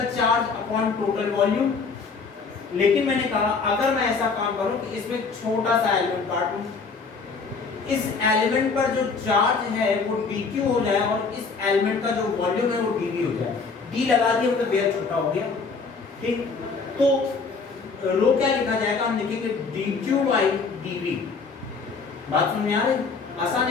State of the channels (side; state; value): right; quieter; 4.7 dB